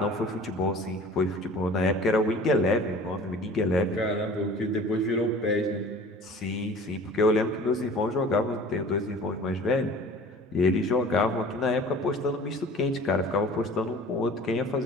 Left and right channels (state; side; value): normal; both; correlation 0.45